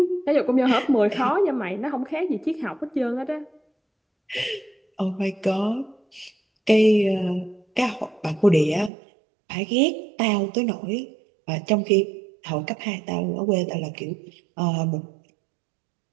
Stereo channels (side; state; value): left; drops out; at 8.9 s